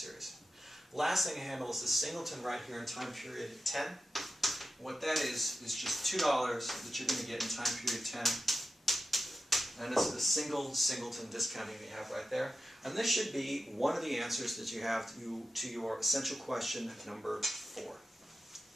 Last thing to handle is the singleton right here in time period 10. What that is just $2 that you're going to get in time period 10. And it's the single singleton discounting you have right there. And this should be one of the answers that you have to your essential question number 4.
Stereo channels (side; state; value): both; normal; correlation 0.91